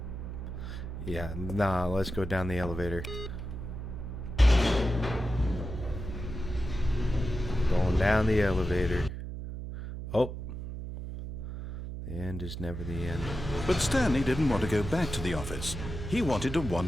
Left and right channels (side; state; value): right; noise; hum, 7 dB below the sound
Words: Yeah, nah, let's go down the elevator. Going down the elevator. Oh. The end is never the end. But Stanley didn't want to go back to the office. He wanted to